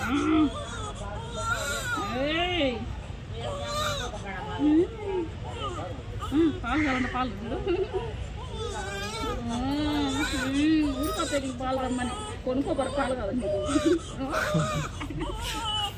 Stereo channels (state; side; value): identical; both; correlation 1.00